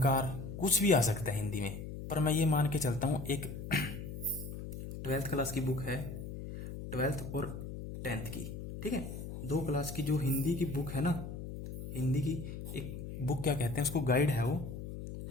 कुछ भी आ सकता है हिंदी में। पर मैं ये मान के चलता हूँ, एक 12th क्लास की बुक है, 12th और 10th की, ठीक है, 2 क्लास की जो हिंदी की बुक है ना, हिंदी की एक बुक क्या कहते हैं उसको, गाइड है वो,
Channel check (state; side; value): noise; left; hum, 8 dB below the sound